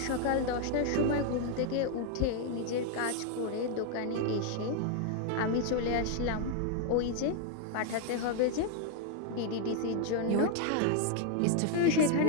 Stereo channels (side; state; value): both; different; correlation 0.00